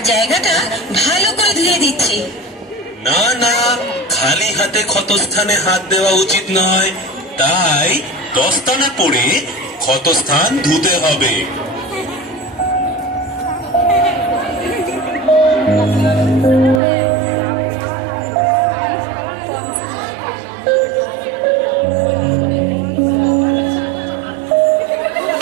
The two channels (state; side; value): drops out; left; at 16.8 s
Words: জায়গাটা ভালো করে ধুয়ে দিচ্ছি। না না, খালি হাতে ক্ষতস্থানে হাত দেওয়া উচিত নয়, তাই দস্তানা পরে ক্ষতস্থান ধুতে হবে।